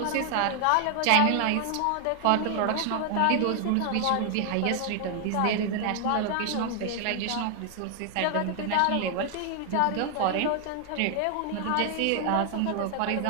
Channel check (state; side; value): different; both; correlation 0.00